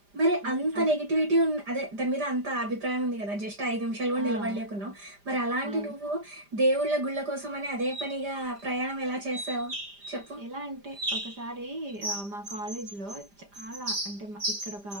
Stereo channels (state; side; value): late; left; 5.0 ms